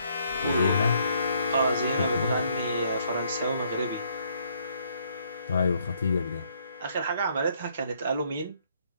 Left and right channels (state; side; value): inverted; both; correlation -0.68